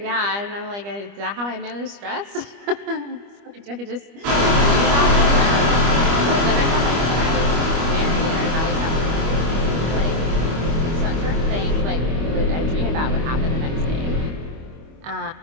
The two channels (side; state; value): left; late; 25 ms